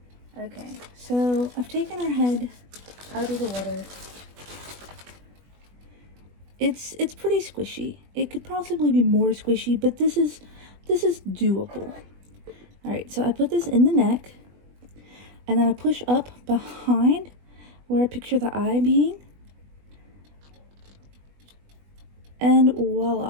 Okay, so I've taken her head out of the water. It's pretty squishy. It could possibly be more squishy, but this is doable. All right, so I put this in the neck, and then I push up behind where I picture the eye being, and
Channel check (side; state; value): left; late; 20 ms